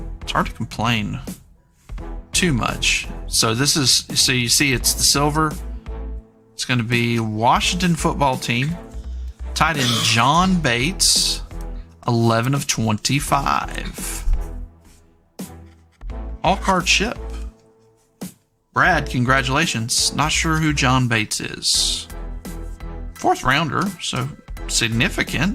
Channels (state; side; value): identical; both; correlation 1.00